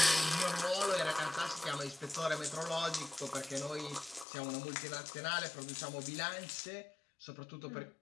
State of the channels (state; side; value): drops out; right; at 4.2 s